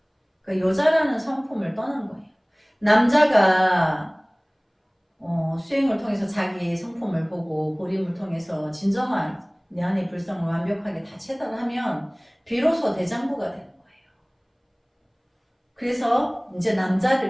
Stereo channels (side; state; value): both; identical; correlation 1.00